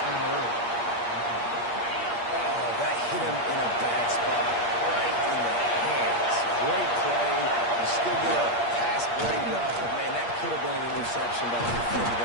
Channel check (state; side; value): late; right; 8.5 ms